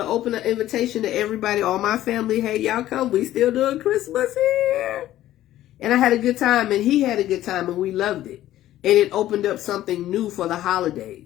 open an invitation to everybody, all my family. Hey, y'all come. We still doing Christmas here. And I had a good time, and he had a good time, and we loved it. And it opened up something new for the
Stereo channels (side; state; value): right; quieter; 13.7 dB